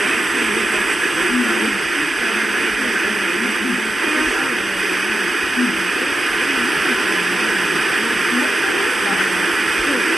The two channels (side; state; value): both; normal; correlation 0.90